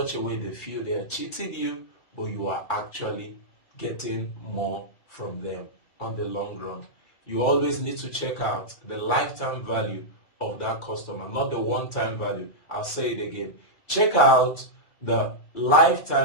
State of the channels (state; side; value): late; right; 2.3 ms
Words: a way they feel they are cheating you, but you are actually getting more from them on the long run. You always need to check out the lifetime value of that customer, not the one-time value. I'll say it again. Check out the